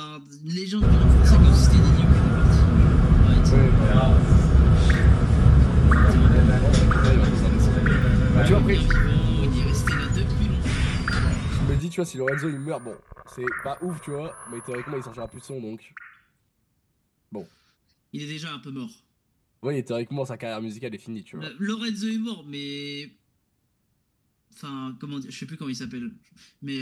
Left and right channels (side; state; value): both; identical; correlation 1.00